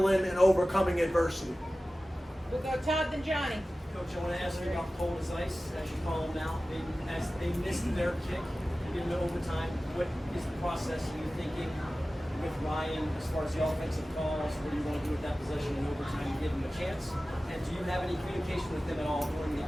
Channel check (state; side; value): normal; both; correlation 0.96